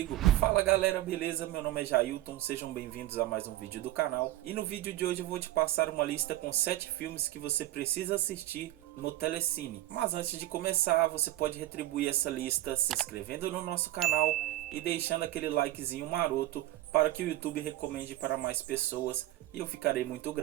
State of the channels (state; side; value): quieter; left; 15.3 dB